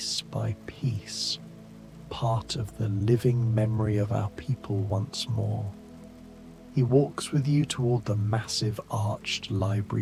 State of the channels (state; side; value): identical; both; correlation 1.00